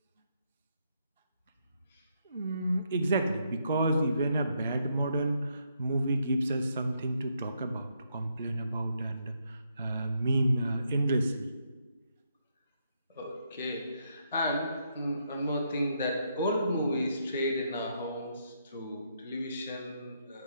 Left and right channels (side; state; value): both; inverted; correlation -0.76